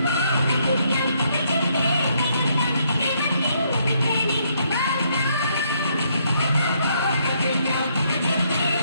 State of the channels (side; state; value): both; inverted; correlation -0.72